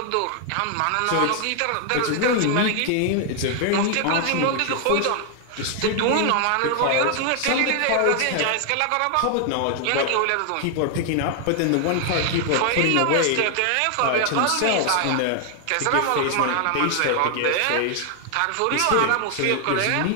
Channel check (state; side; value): different; both; correlation 0.00